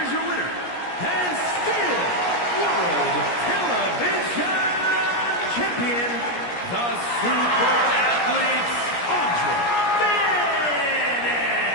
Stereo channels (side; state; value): right; late; 17 ms